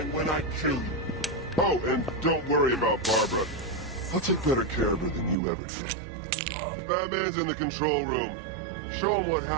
when I kill you. Oh, and don't worry about Barbara. I'll take better care of her than you ever did. Batman's in the control room. Show him what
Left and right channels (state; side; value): drops out; left; at 5.4 s